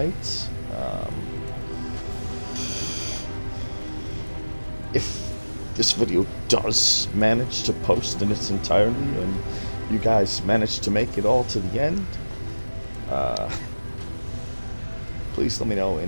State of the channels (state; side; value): inverted; both; correlation -1.00